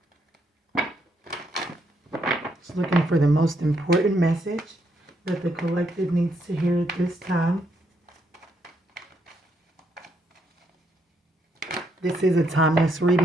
looking for the most important message that the collective needs to hear at this time. This is a timeless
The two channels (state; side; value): normal; both; correlation 0.75